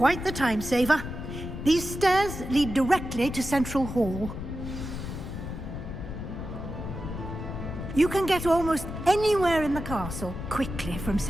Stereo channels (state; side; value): noise; left; rumble, 7 dB below the sound